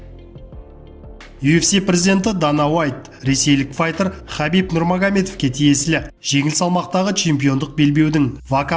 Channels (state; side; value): identical; both; correlation 1.00